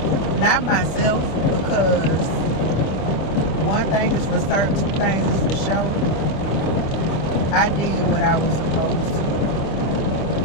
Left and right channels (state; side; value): late; right; 25 ms